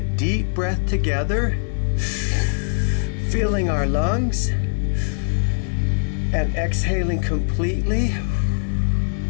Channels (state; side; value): silent; right; 58 dB below the other